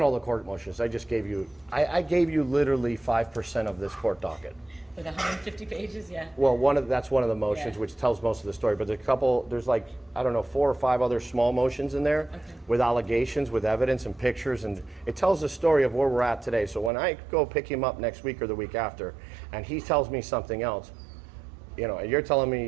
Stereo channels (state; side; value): drops out; left; at 16.9 s